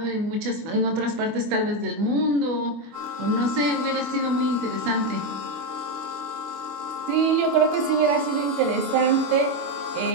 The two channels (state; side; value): late; left; 24 ms